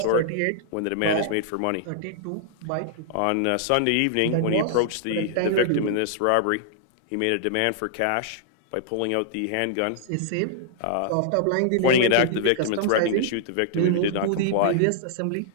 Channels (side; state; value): both; different; correlation -0.01